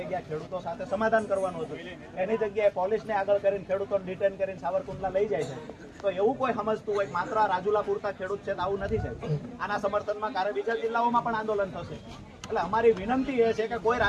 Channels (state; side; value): identical; both; correlation 1.00